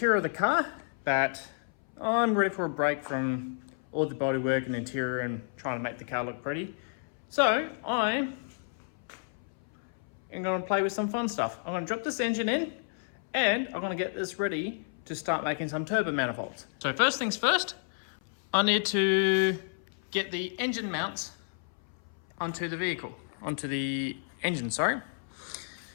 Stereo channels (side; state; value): right; silent; 57 dB below the other